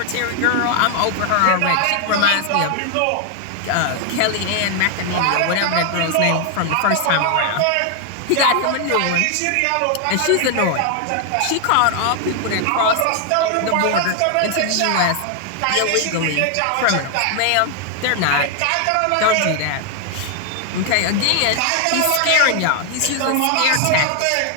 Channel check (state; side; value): different; both; correlation 0.00